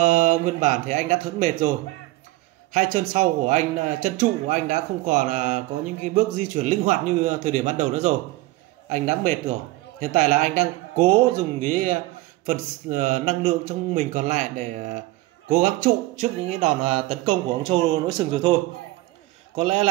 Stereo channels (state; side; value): quieter; left; 18.8 dB